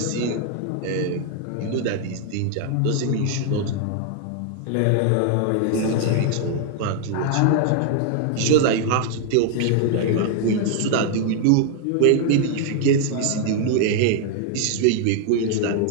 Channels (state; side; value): different; both; correlation 0.00